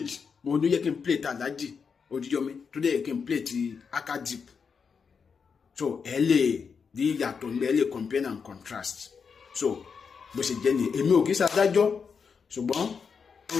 mo ní yẹ kí n play ti Alhaji Oríyọmí tó dẹ̀ yẹ kí n play ti Akadip so ẹ lè di ìyàtọ̀ ní ẹ lè compare and contrast so bó ṣe jẹ́ ni èmi ò kì í ṣàdájọ́ ṣùgbọ́n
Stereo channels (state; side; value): quieter; right; 5.9 dB